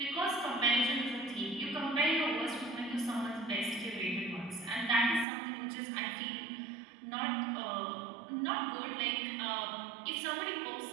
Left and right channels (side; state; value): left; drops out; at 5.2 s